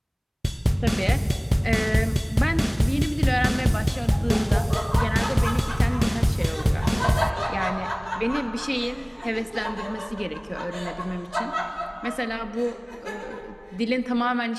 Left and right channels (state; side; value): identical; both; correlation 1.00